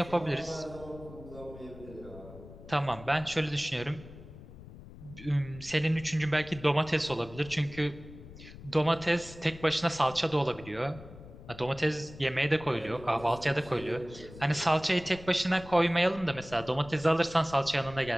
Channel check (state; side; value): noise; left; rumble, 17 dB below the sound